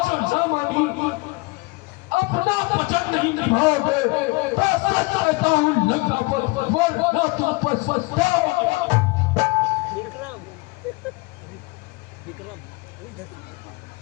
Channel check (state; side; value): quieter; right; 25.6 dB